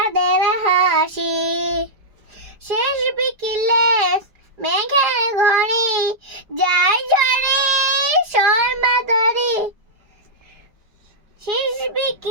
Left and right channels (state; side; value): late; left; 5.0 ms